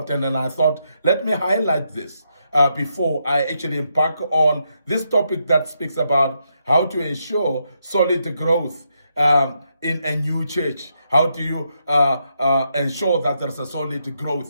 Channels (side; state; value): both; inverted; correlation -0.80